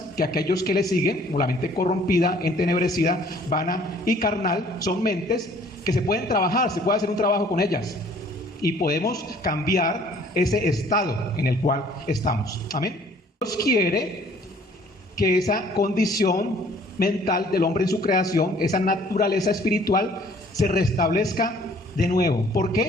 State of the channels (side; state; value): both; normal; correlation 0.56